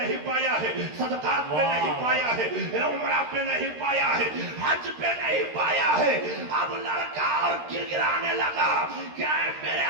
पाया है, सदकात पे नहीं पाया है, उमरा पे नहीं पाया है, हज पे नहीं पाया है। अब लड़का और गिड़गिड़ाने लगा क्या है मेरे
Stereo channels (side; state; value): left; late; 13 ms